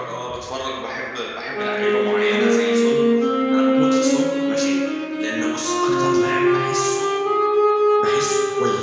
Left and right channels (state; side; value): identical; both; correlation 1.00